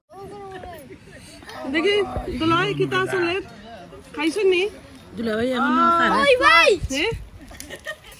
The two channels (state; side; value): identical; both; correlation 1.00